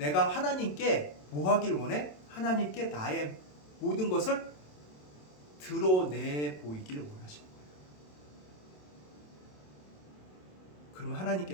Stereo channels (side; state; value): right; late; 27 ms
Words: 하나님께 뭐 하길 원해? 하나님께 나의 모든 것을 드러내 보이길 원하시는 거예요. 그러면